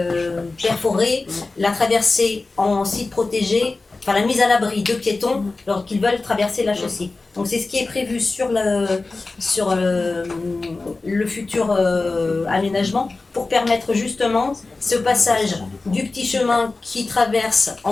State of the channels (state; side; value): quieter; right; 3.5 dB